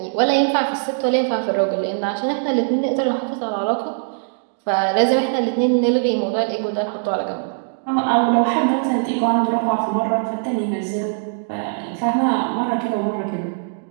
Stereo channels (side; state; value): left; silent; digital silence